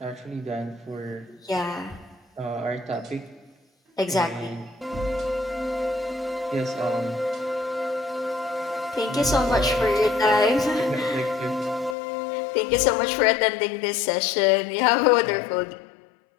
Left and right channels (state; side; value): drops out; right; at 12.0 s